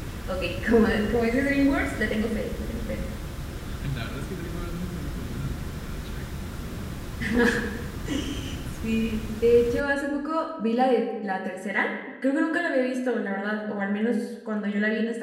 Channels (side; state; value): both; identical; correlation 1.00